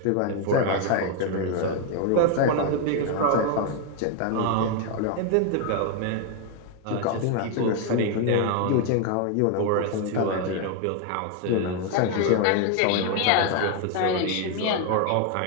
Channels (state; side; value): different; both; correlation 0.01